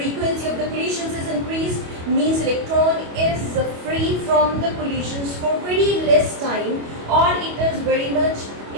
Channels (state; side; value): late; left; 25 ms